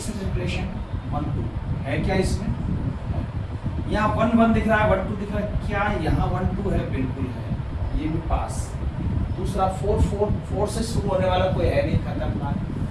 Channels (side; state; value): both; identical; correlation 1.00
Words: रिलेशन 1 2 है क्या इसमें? यहाँ 1 1 दिख रहा है, 1 2 दिख रहा है, क्या यहाँ 1 2 है? बिल्कुल है, ये भी पास। दूसरा 4 4 4 से शुरू होने वाला कोई है नहीं, खतरनाक।